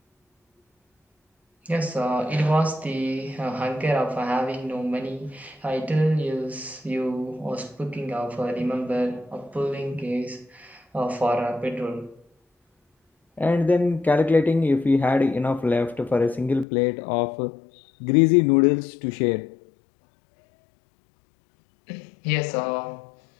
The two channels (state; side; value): drops out; right; at 16.7 s